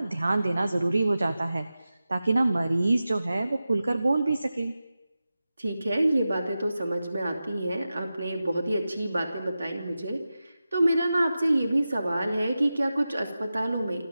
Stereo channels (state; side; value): inverted; both; correlation -0.94